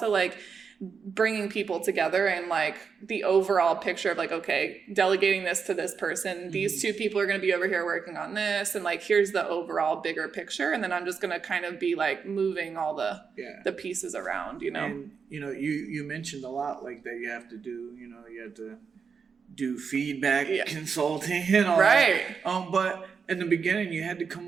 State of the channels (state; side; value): quieter; left; 5.9 dB